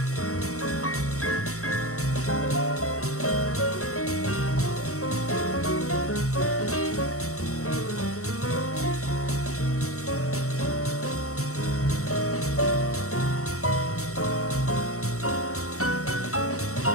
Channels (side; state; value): right; late; 0.64 ms